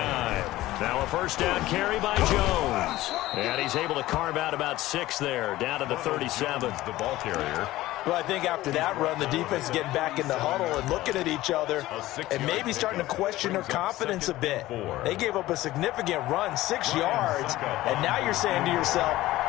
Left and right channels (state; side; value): quieter; right; 16.6 dB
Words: Now a 1st down carry by Jones. And he's able to carve out about 6 there, down to the 37. The ball carrier. Well, I think after that run, the defense is getting back in the huddle and looking at each other and maybe starting to question their confidence a bit. They gave up a significant run, 6 yards, and now you're saying to yourself,